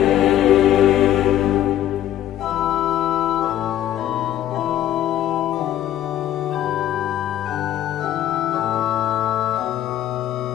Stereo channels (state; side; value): quieter; right; 12.1 dB